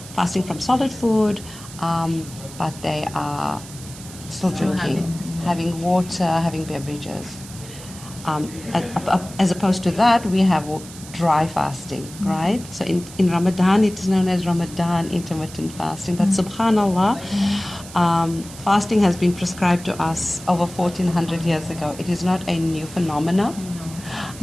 fasting from solid food, but they are still drinking, having water, having beverages. As opposed to that, we have dry fasting, right? So in Ramadan, it is known as Ramadan intermittent fasting. But subhanAllah, fasting has been prescribed to us over 1400 years ago. It is not a new phenomenon,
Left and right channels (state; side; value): noise; right; hiss, 16 dB below the sound